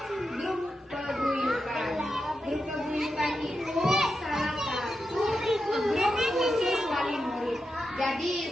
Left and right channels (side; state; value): both; normal; correlation 0.88